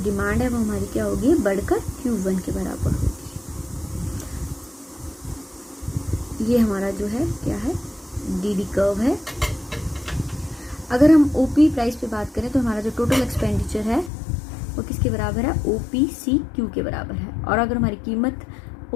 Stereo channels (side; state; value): right; drops out; at 14.1 s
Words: डिमांड है वो हमारी क्या होगी, बढ़कर Q1 के बराबर होगी। ये हमारा जो है क्या है, DD कर्व है। अगर हम OP प्राइस पे बात करें तो हमारा जो टोटल एक्सपेंडिचर है वो किसके बराबर है, OPCQ के बराबर है। और अगर हमारी कीमत